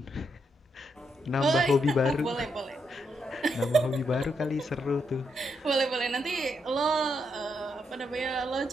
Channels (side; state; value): both; normal; correlation 0.80